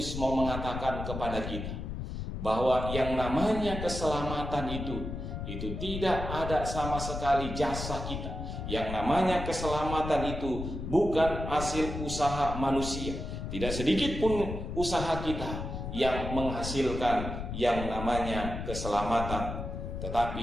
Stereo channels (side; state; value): left; noise; rumble, 6 dB below the sound